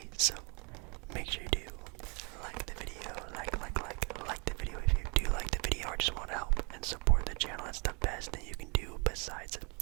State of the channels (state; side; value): quieter; left; 32.1 dB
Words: So make sure you do like the video, like the video if you do like the video or just want to help and support the channel. That's the best thing you can do besides